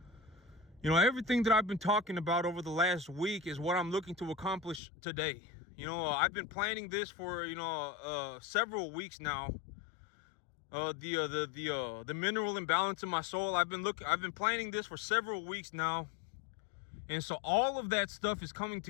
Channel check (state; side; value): drops out; right; at 4.8 s